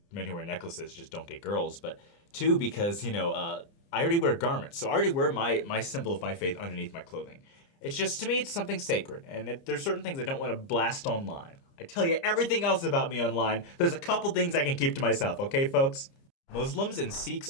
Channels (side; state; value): right; late; 30 ms